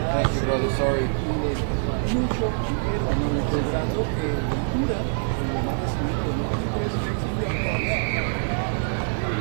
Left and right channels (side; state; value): left; silent; digital silence